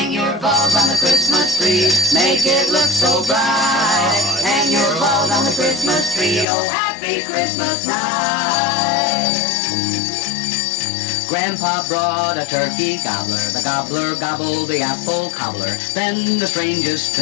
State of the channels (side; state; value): right; drops out; at 6.5 s